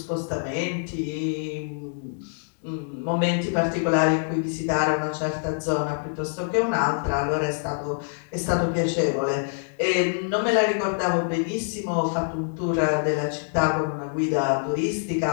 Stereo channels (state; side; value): silent; right; digital silence